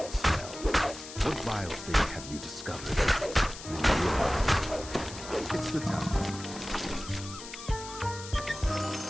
smell. What vile thing have you discovered? And then you realize it's the town.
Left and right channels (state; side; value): noise; left; hiss, 12 dB below the sound